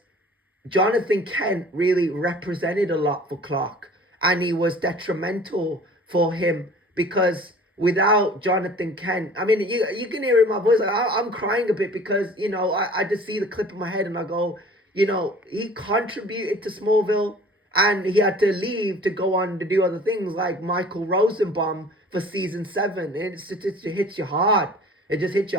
Jonathan Kent really represented a lot for Clark, and he was detrimental for him, because without Jonathan Kent, I mean, you can hear in my voice, like, I'm crying a bit, because, I just see the clip in my head and I go, he contributed to Smallville, and he had to leave to go on to do other things like Michael Rosenbaum for season 7. It hits you hard. It just hits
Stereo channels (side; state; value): both; normal; correlation 0.47